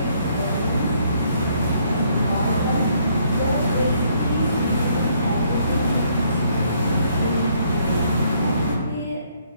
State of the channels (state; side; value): inverted; both; correlation -0.68